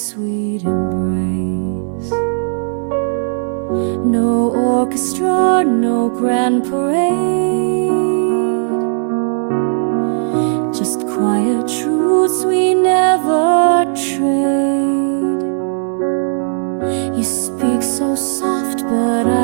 embrace. No orchestra, no grand parade, just quiet truths we never trade. You speak so soft, but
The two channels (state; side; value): silent; left; 69 dB below the other